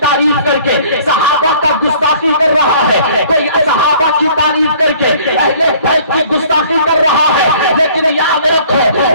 کر کے صحابہ کا گستاخی کر رہا ہے، کوئی صحابہ کی تعریف کر کے اہل بیت کی گستاخی کر رہا ہے، لیکن یاد رکھو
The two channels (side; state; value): both; inverted; correlation -0.53